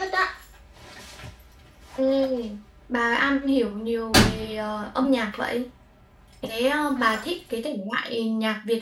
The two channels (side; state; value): both; identical; correlation 1.00